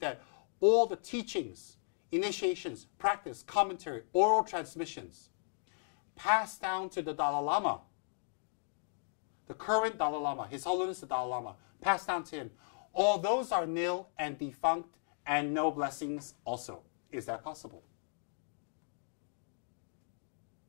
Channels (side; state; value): right; silent; digital silence